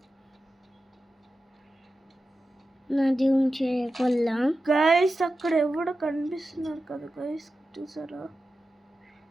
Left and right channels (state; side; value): normal; both; correlation 0.92